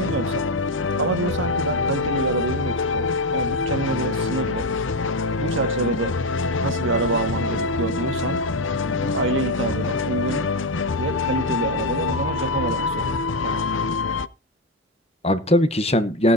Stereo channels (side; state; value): both; normal; correlation 0.09